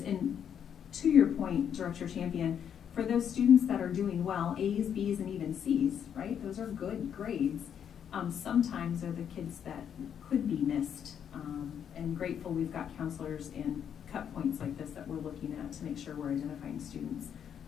And to your point, Director Champion, for those students that are doing well, A's, B's, and even C's, right? Those are good grades. Sometimes are the kids that could be missed, and grateful we've got counselors and cut points like this that we're looking at to make sure we're identifying students.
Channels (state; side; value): quieter; right; 8.5 dB